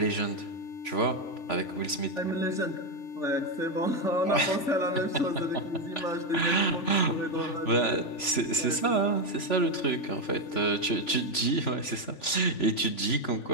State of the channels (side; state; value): right; late; 3.5 ms